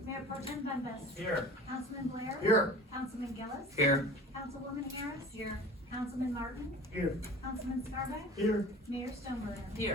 Mayor Pro Tem Dundas. Here. Councilman Blair. Here. Councilman Gillis. Here. Councilwoman Harris. Here. Councilman Martin. Here. Councilman Scarback. Here. Mayor Stoneburner.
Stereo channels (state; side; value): normal; both; correlation 0.40